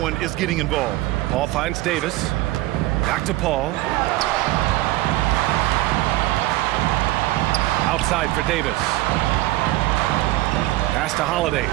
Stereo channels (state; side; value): quieter; left; 17.6 dB